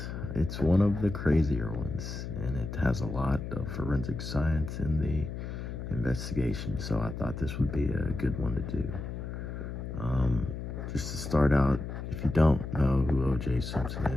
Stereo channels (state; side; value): noise; left; hum, 7 dB below the sound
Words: it's one of the crazier ones, and it has a lot of forensic science in the investigation, so I thought this would be a good one to do. Just to start out, if you don't know who OJ Simpson